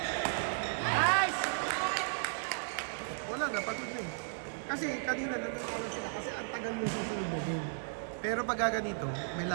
Nice! Wala na, pagod na eh. Kasi kanina nananalo sila kasi ang tagal mo susunod na game. Pero pag ganito, may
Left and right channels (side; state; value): left; silent; digital silence